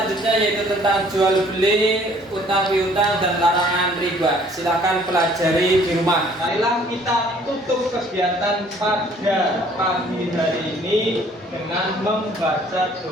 yaitu tentang jual beli, utang piutang dan larangan riba. Silakan pelajari di rumah. Marilah kita tutup kegiatan pada pagi hari ini dengan membaca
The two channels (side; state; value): both; normal; correlation 0.58